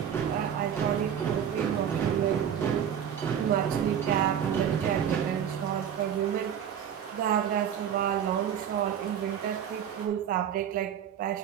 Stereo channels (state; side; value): quieter; left; 8.9 dB